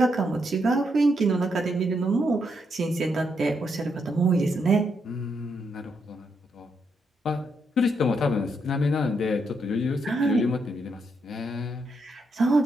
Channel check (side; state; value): both; normal; correlation 0.79